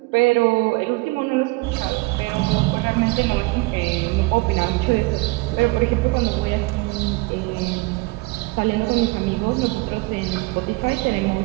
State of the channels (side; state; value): left; quieter; 24.3 dB